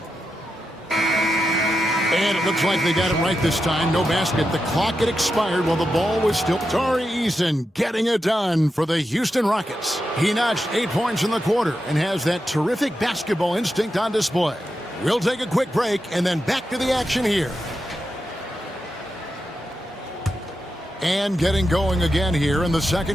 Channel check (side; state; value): both; normal; correlation 0.88